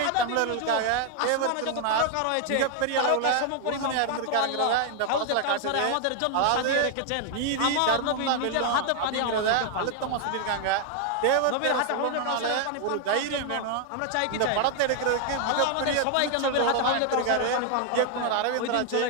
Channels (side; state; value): both; different; correlation 0.00